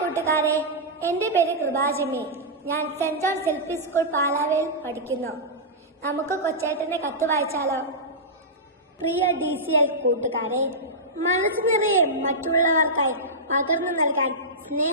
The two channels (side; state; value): both; normal; correlation -0.13